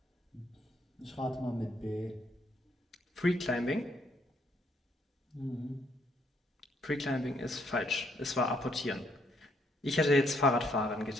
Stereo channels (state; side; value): normal; both; correlation 0.71